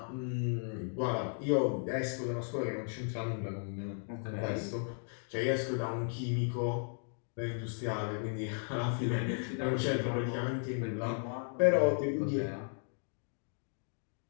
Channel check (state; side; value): silent; right; 54 dB below the other